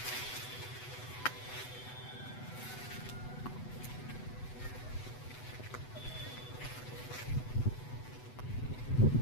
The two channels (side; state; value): right; late; 8.0 ms